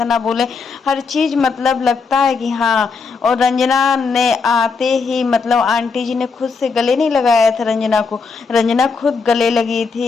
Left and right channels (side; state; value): right; quieter; 4.9 dB